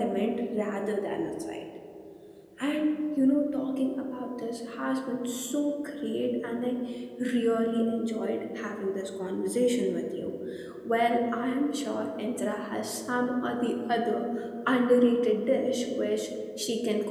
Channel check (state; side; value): identical; both; correlation 1.00